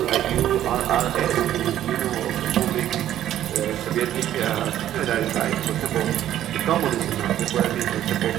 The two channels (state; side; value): quieter; left; 12.0 dB